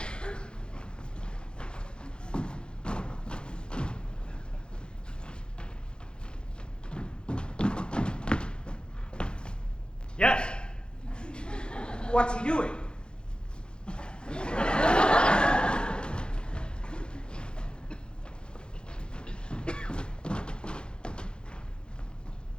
Yes. What's he doing?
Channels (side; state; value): right; late; 0.050 ms